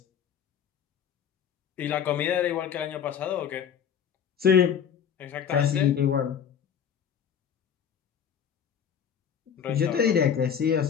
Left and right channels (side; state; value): right; quieter; 8.1 dB